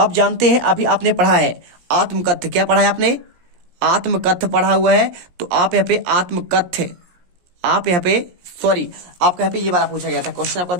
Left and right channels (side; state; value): left; late; 17 ms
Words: जानते हैं अभी आपने पढ़ा है आत्मकथ्य। क्या पढ़ा है आपने, आत्मकथ्य पढ़ा हुआ है। तो आप यहाँ पे आत्मकथ्य, आप यहाँ पे सॉरी आपका यहाँ पे ये वाला पूछा गया था क्वेश्चन, आपका